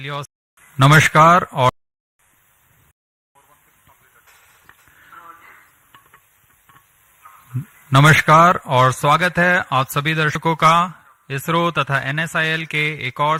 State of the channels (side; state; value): both; identical; correlation 1.00